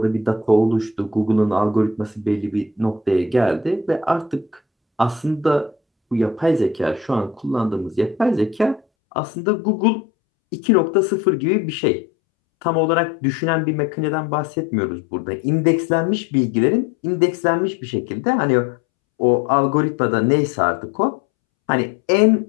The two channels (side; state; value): right; drops out; at 8.8 s